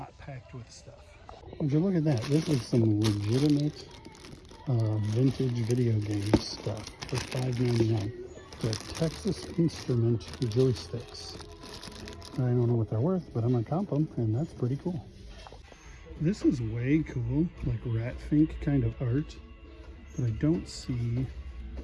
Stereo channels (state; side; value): identical; both; correlation 1.00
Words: packed with stuff. Would you look at that? This is some legitimate vintage video game stuff for $5.99. The Texas Instrument joysticks. I don't know what they're worth, but I'm gonna comp them, and that's pretty cool. This is way cool, like rat fink kind of art, but I don't see